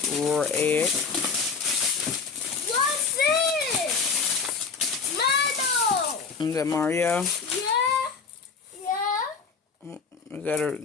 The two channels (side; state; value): right; quieter; 5.4 dB